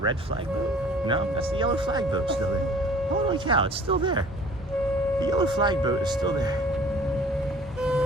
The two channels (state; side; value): normal; both; correlation 0.50